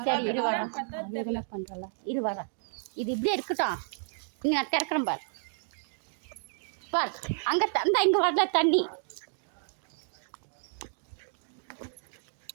சரி, இரு வரேன். இது இப்படியே இருக்கட்டும். இங்கே நான் திறக்கிறேன் பார். அங்கே தந்தா இங்கே வரல தண்ணி.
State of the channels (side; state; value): left; silent; digital silence